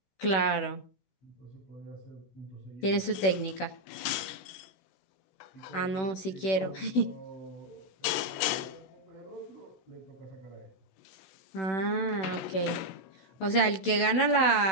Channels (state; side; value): late; right; 16 ms